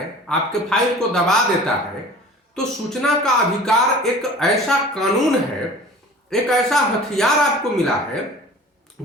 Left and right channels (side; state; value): both; normal; correlation 0.42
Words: आपके फाइल को दबा देता है, तो सूचना का अधिकार एक ऐसा कानून है, एक ऐसा हथियार आपको मिला है